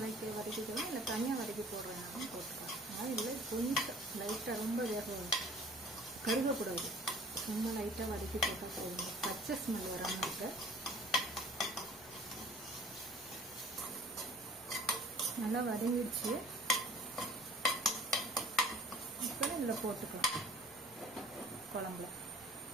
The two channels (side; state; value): both; normal; correlation 0.50